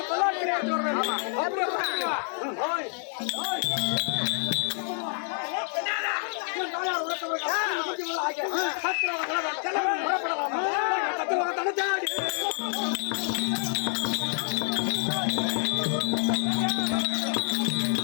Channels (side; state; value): right; silent; 56 dB below the other